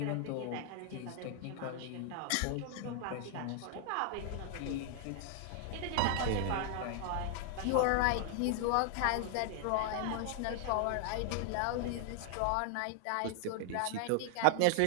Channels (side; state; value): both; different; correlation 0.00